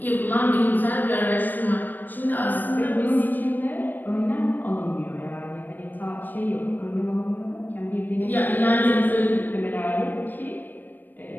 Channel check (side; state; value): right; late; 0.089 ms